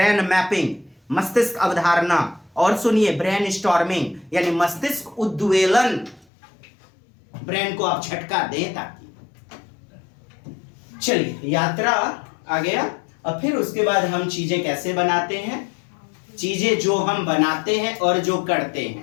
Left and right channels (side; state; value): right; drops out; at 6.2 s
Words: मैपिंग, मस्तिष्क अवधारणा। और सुनिए, ब्रेन स्टॉर्मिंग यानी मस्तिष्क उद्वेलन, ब्रेन को आप झटका दें ताकि। चलिए, यात्रा आ गया। अब फिर उसके बाद हम चीजें कैसे बनाते हैं, चीजें जो हम बनाते हैं और जो करते